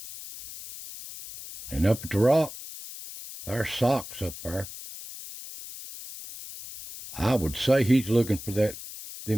And up at the rock, there's Socks up there. I would say he's looking for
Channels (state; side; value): noise; left; hiss, 13 dB below the sound